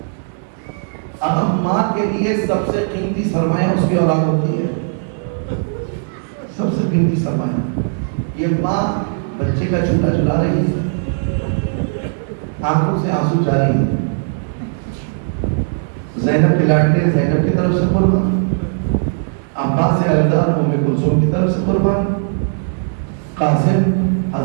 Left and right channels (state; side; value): silent; left; digital silence